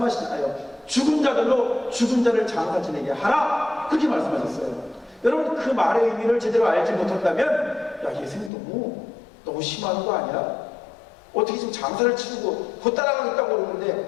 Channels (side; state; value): right; drops out; at 8.5 s